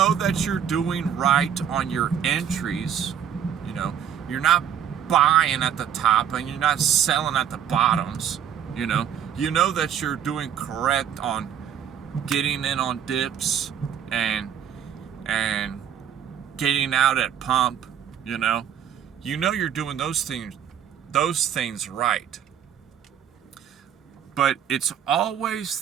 that you're doing right on your entries. You're not buying at the top and you're not selling at the bottoms. You know that you're doing correct on getting in on dips and getting out at pump. You're doing those things right. But it's always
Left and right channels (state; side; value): quieter; left; 8.9 dB